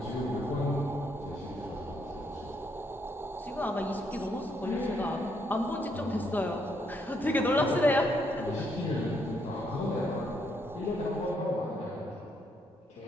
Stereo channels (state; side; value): normal; both; correlation 0.74